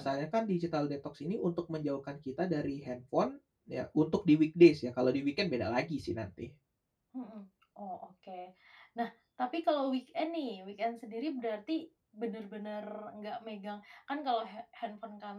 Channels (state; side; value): identical; both; correlation 1.00